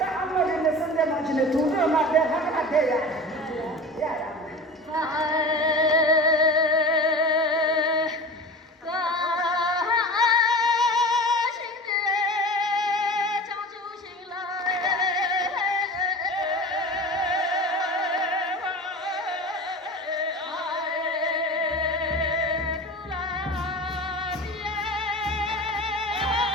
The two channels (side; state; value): both; normal; correlation 0.34